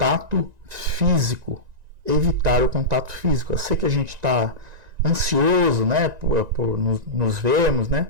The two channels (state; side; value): late; left; 1.9 ms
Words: físico. Eu sei que a gente está ansioso, né, por nos vermos, né,